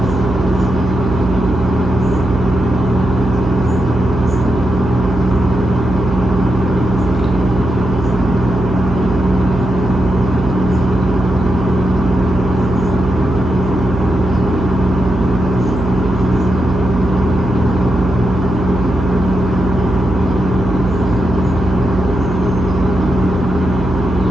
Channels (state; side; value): noise; right; hum, 6 dB below the sound